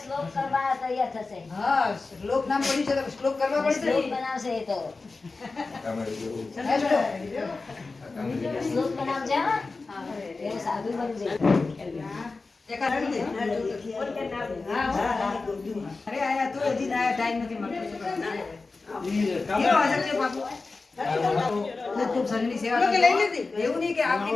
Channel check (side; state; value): right; quieter; 3.8 dB